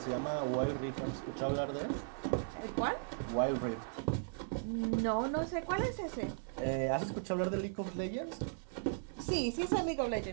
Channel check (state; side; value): silent; left; 53 dB below the other